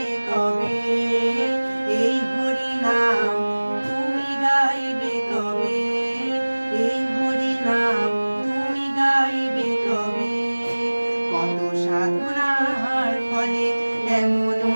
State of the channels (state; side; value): inverted; both; correlation -1.00